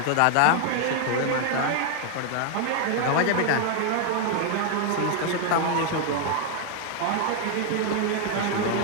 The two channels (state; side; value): different; both; correlation 0.00